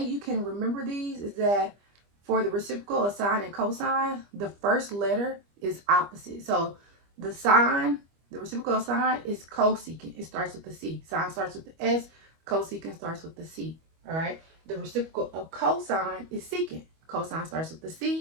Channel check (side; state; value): left; late; 25 ms